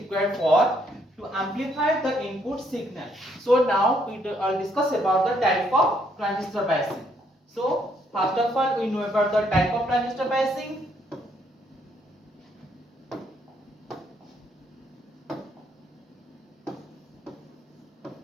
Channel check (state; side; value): normal; both; correlation 0.70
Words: for to amplify the input signal. So now we will discuss about the type of transistor biasing. So first of all, we know about the type of transistor biasing.